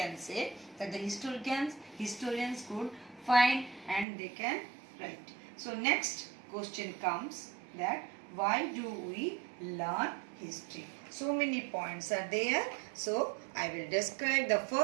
say, that the historians could find and they can write. So next question comes that why do we learn history? So many points are there. So I will describe. The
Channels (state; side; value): drops out; left; at 4.0 s